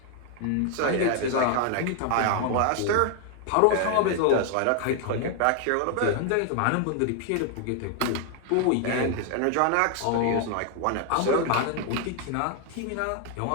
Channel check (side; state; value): both; different; correlation 0.00